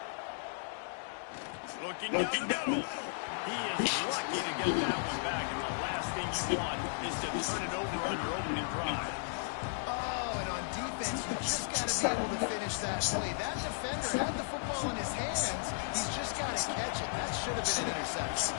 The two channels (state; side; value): silent; right; digital silence